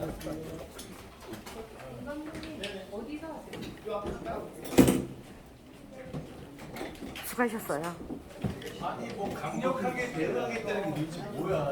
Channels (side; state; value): both; identical; correlation 1.00